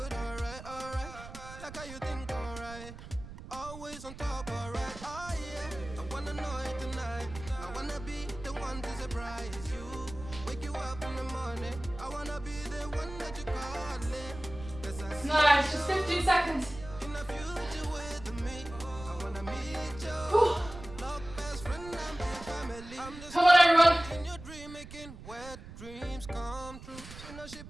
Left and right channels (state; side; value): noise; right; rumble, 14 dB below the sound